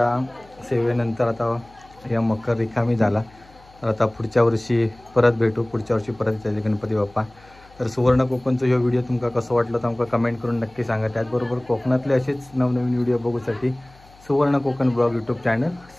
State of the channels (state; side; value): noise; left; hum, 26 dB below the sound